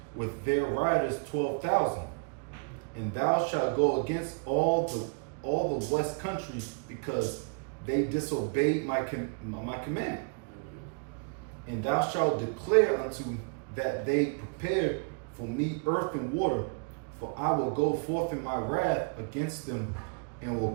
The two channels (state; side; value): quieter; left; 36.2 dB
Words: with their riders 12,000. And thou shalt go against all the west countries, because they disobeyed my command. And thou shalt declare unto that they prepare for me earth and water, for I will go forth in my wrath against them, and will